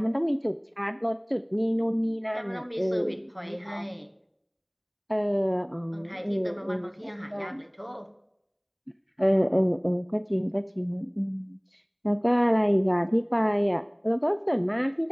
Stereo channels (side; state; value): both; identical; correlation 1.00